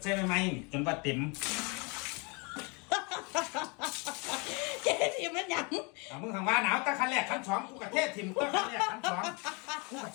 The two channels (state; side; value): quieter; right; 31.4 dB